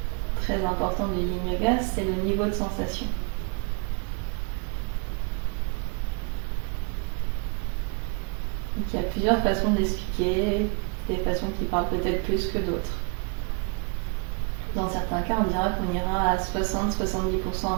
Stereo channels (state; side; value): quieter; left; 33.3 dB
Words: très important du Yin Yoga, c'est le niveau de sensation. Donc, il y a plusieurs façons de l'expliquer, des façons qui parlent peut-être plus que d'autres. Dans certains cas, on dira qu'on ira à 60-70%